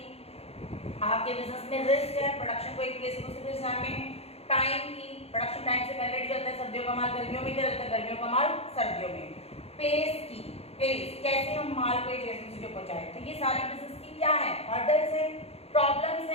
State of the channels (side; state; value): right; late; 0.29 ms